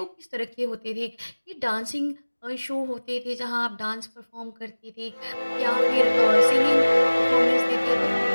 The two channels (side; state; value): both; inverted; correlation -1.00